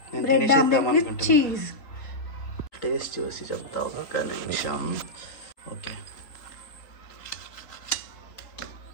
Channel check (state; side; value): late; right; 3.8 ms